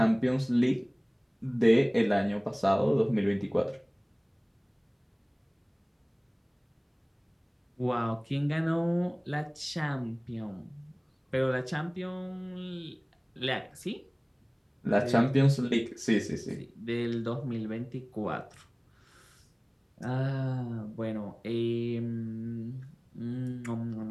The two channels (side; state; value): both; identical; correlation 1.00